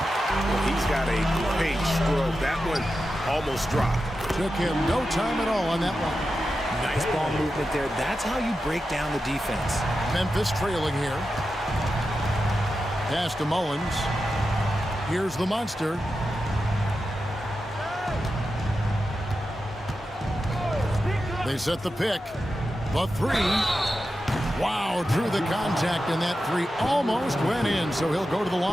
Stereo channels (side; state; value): both; normal; correlation 0.90